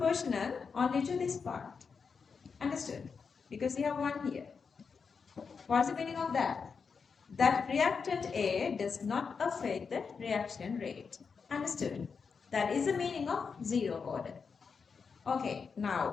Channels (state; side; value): quieter; right; 5.6 dB